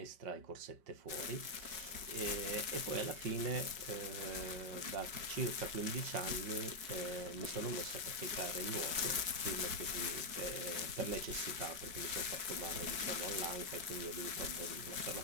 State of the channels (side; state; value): left; late; 5.2 ms